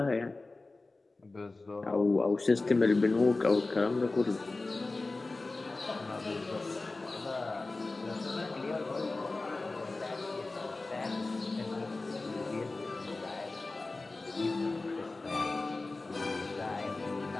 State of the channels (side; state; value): right; quieter; 3.3 dB